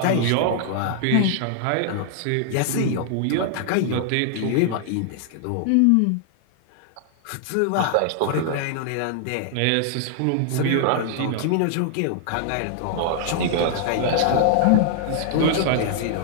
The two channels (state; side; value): different; both; correlation -0.01